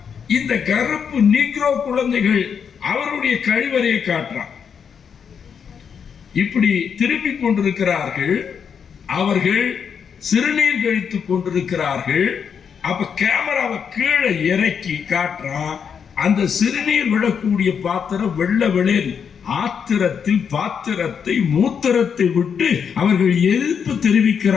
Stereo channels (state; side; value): quieter; right; 7.0 dB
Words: இந்த கருப்பு நீக்ரோ குழந்தைகள் அவருடைய கழிவறையை காட்டுறான். இப்படி திரும்பி கொண்டிருக்கிறார்கள், அவர்கள் சிறுநீர் கழித்துக் கொண்டிருக்கிறார்கள். அப்ப கேமராவை கீழே இறக்கி காட்டுறான். அந்த சிறுநீர் விடக்கூடிய பாத்திரம் வெள்ள வெளியில் ஆத்திரத்தில் பாத்திரத்தை மூத்திரத்தை விட்டு அவர்கள் எதிர்ப்பு